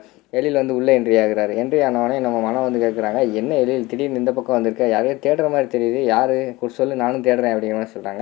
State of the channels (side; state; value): right; quieter; 20.8 dB